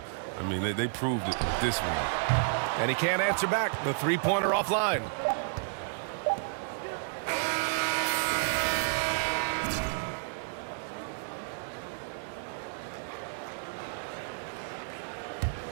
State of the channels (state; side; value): silent; left; digital silence